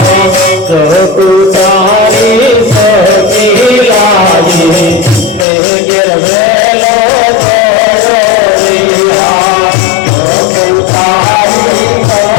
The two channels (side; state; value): right; drops out; at 5.5 s